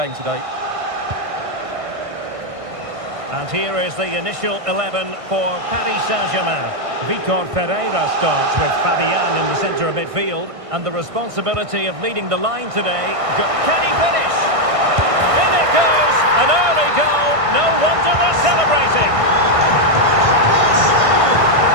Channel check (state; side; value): late; left; 1.6 ms